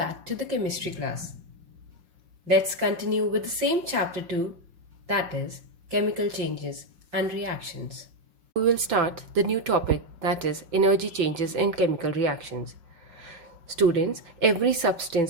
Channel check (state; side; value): late; left; 5.5 ms